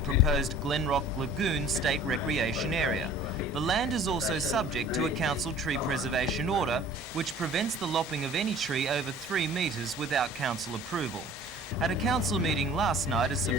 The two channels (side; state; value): both; normal; correlation 0.48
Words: Glenrock Lagoon State Recreation Area. The land is also subject to a council tree preservation order, which prevents the lopping of any tree over 3 metres without council approval. At a council meeting last night, a